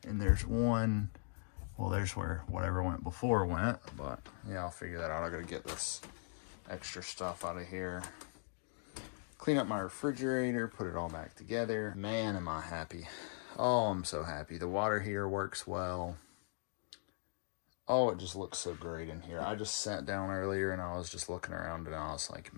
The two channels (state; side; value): silent; right; digital silence